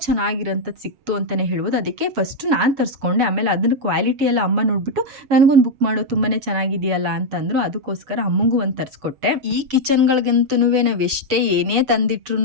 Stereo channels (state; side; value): late; left; 7.3 ms